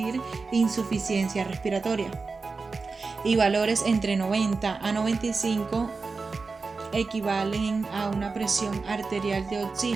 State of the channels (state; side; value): quieter; left; 4.3 dB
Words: insuficiencia respiratoria. Y valores entre 90 a 95 equivalen a una presión arterial de